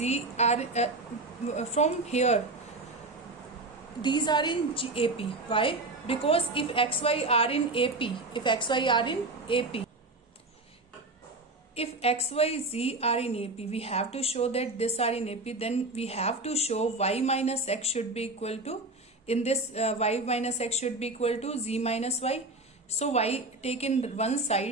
are from here, these are in AP. Why? Because if x, y are in AP, if x, y are in AP, if x, y, z are in AP, we have to show that this are in AP. Then we have to show y minus x should be equal to, in this y minus x should be equal to z minus y. So y take in one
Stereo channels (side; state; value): left; quieter; 3.0 dB